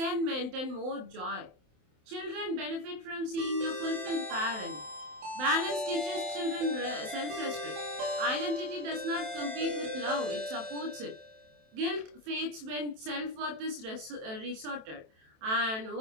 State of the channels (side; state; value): left; late; 27 ms